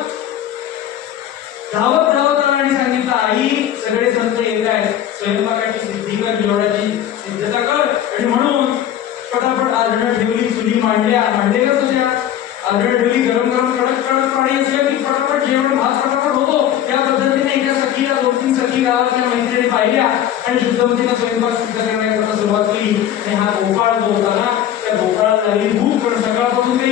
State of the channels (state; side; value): quieter; right; 10.8 dB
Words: धावत धावत आला आणि सांगितलं, आई सगळे संत येत आहेत, स्वयंपाकाची सिद्धी कर, जेवणाची सिद्धता कर. आणि म्हणून पटापट आधणं ठेवली, चुली मांडलेल्याच होत्या, आधणं ठेवली, गरम गरम कडक कडक पाणी असलं की पटापट जेवण, भात पटापट होतो. त्या पद्धतीने एका सखीला 2-3 सखी गावातल्या मैत्रिणी पाहिल्या आणि शुद्धमतीनं स्वयंपाक सिद्ध करण्याकरता सुरुवात केली. आणि हा गोपाळ जो होता ना, त्या गोपाळाला लागली भूक, पण सकाळपासून